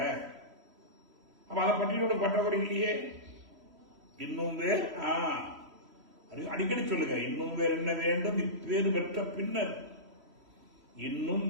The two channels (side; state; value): left; late; 3.1 ms